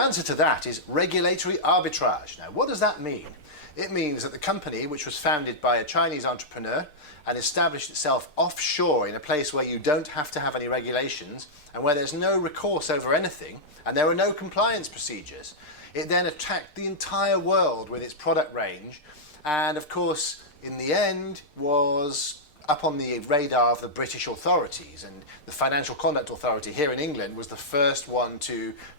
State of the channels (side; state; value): right; late; 6.6 ms